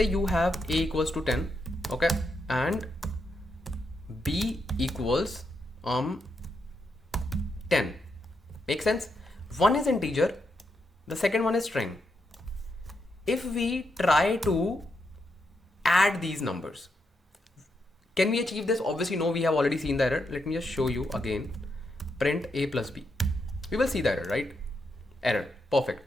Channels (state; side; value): normal; both; correlation 0.82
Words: you have a equals to 10, okay, and b equals 10. Make sense? One is integer, the second one is string. If we try to add these numbers, can we achieve this? Obviously no, we have already seen the error. Let me just show you again. Print a plus b. We will see the error, right? Error, perfect.